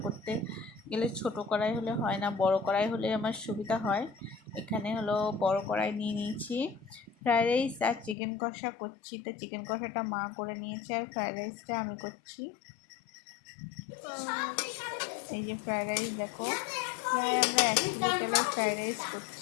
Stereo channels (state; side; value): drops out; right; at 8.2 s